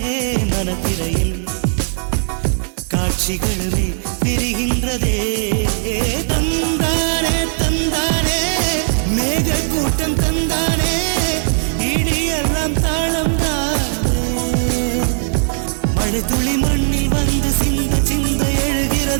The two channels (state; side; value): silent; left; 66 dB below the other